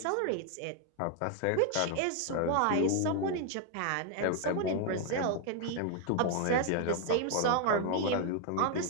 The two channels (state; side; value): different; both; correlation 0.01